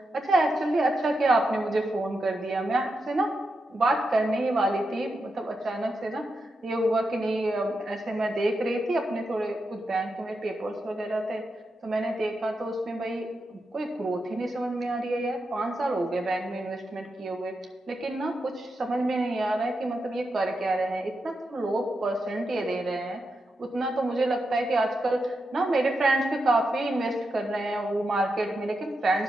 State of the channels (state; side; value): normal; both; correlation 0.87